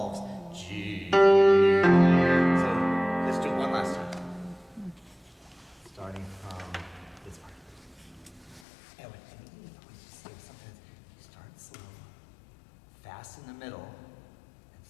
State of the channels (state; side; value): drops out; right; at 8.7 s